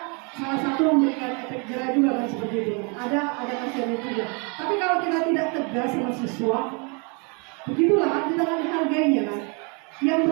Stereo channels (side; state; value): left; quieter; 34.2 dB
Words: salah satu memberikan efek jerah juga kan seperti itu. Ada kasihan juga. Tapi kalau kita tidak tegas sama siswa, begitulah kan kita akan dihargainya kan. Yang